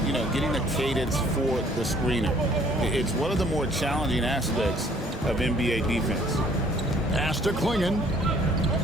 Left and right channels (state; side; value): normal; both; correlation 0.59